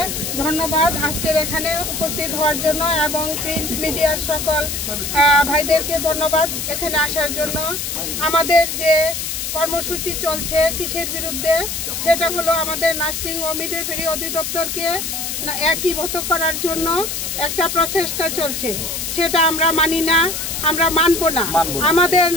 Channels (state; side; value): noise; left; hiss, 4 dB below the sound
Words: ধন্যবাদ আজকের এখানে উপস্থিত হওয়ার জন্য এবং প্রিন্ট মিডিয়ার সকল ভাইদেরকে ধন্যবাদ এখানে আসার জন্য। আমাদের যে কর্মসূচি চলছে কিসের বিরুদ্ধে, সেটা হলো আমাদের নার্সিং ও মিডওয়াইফারি অধিদপ্তরকে একীভূত করার জন্য একটা প্রচেষ্টা চলছে, সেটা আমরা মানি না, আমরা মানব না। আমাদের